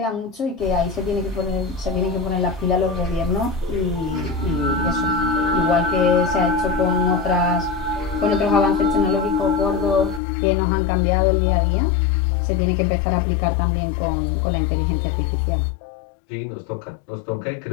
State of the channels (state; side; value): drops out; right; at 10.2 s